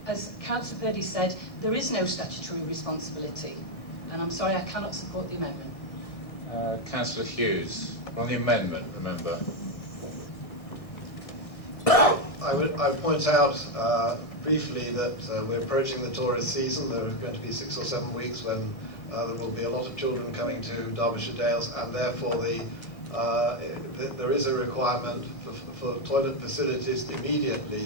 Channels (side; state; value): right; late; 1.6 ms